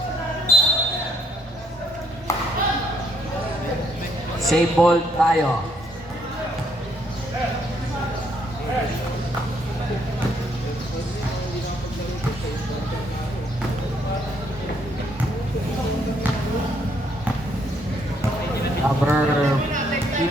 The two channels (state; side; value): normal; both; correlation 0.70